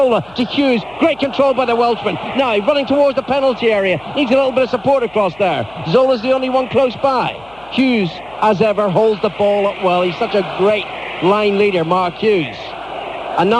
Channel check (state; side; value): noise; left; hum, 27 dB below the sound